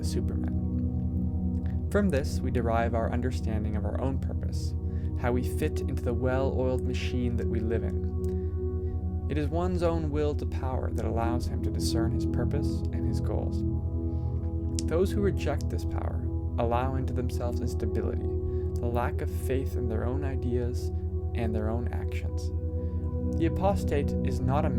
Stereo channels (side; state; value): both; identical; correlation 1.00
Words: Superman. From this, we derive our understanding of our own purpose, how we fit into the well-oiled machine that we live in. It is one's own will to power that allows him to discern his purpose and his goals. Those who reject this power allow into themselves instability, the lack of faith in their own ideas and their own actions. The apostate is not a